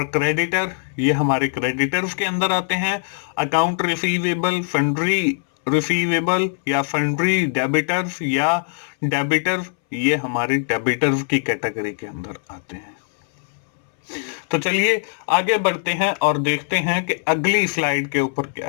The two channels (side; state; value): right; silent; 65 dB below the other